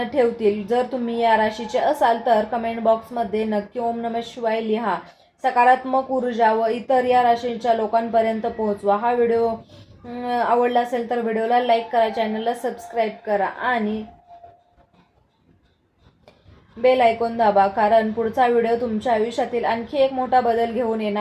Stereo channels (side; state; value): both; identical; correlation 1.00